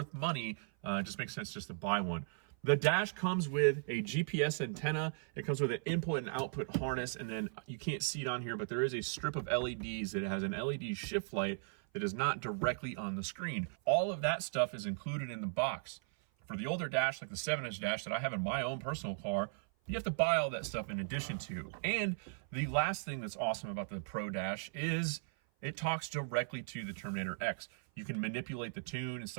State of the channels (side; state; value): left; silent; 53 dB below the other